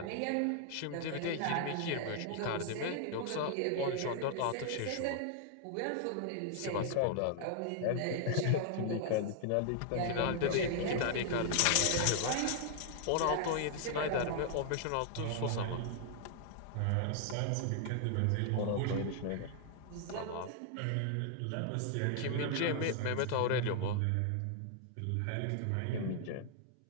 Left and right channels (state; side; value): different; both; correlation 0.00